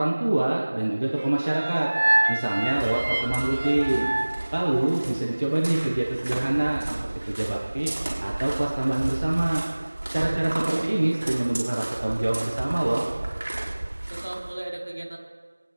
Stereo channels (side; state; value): both; inverted; correlation -1.00